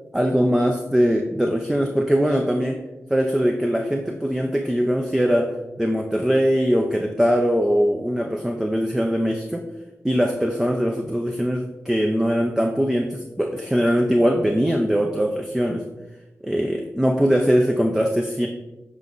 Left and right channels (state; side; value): normal; both; correlation 0.96